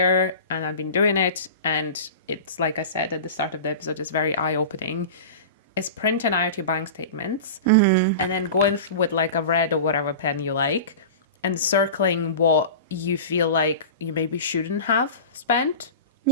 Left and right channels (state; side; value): inverted; both; correlation -0.32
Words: and I've been doing it, and it's like I said at the start of the episode, it's very eye-opening, is printing out your bank statements and then going with like a red or whatever pen you like and circling what you feel like you maybe shouldn't have spent.